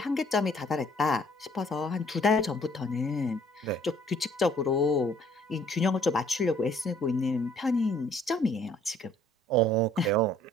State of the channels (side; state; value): both; normal; correlation 0.59